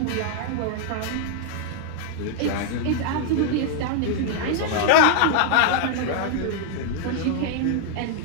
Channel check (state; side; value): different; both; correlation -0.01